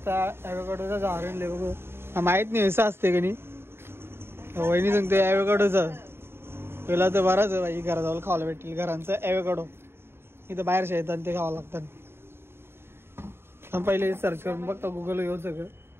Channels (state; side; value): late; left; 0.11 ms